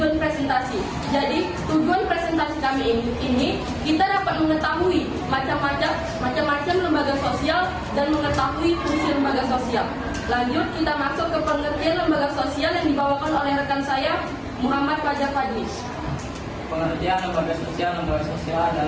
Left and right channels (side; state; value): both; identical; correlation 1.00